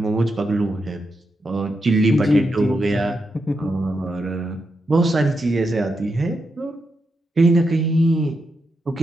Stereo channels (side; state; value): both; normal; correlation 0.85